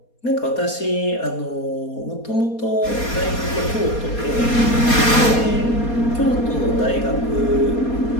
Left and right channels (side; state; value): right; late; 4.2 ms